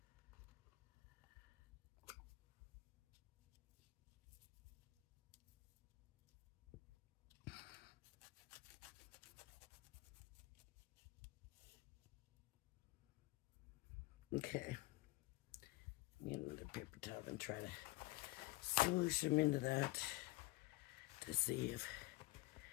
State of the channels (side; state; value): right; quieter; 21.2 dB